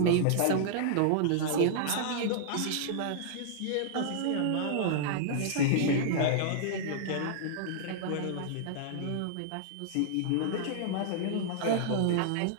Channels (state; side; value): different; both; correlation -0.01